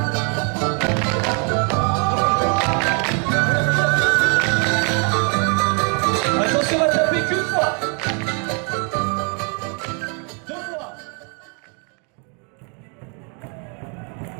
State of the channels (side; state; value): left; quieter; 37.3 dB